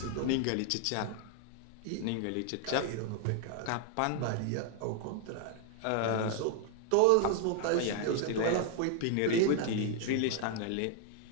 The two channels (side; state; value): both; different; correlation 0.00